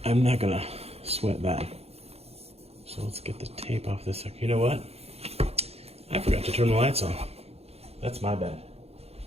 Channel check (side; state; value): left; late; 0.29 ms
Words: I'm not gonna sweat that. So let's get the tape off this. You know what? I forgot to turn the lights on. That's my bad.